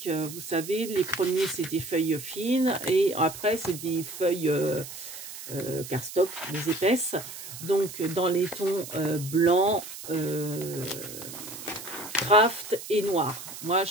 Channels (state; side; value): noise; right; hiss, 12 dB below the sound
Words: Vous savez, les premiers c'est des feuilles fines et après c'est des feuilles cardstock, des épaisses. Donc dans les tons blanc, craft et noir. Moi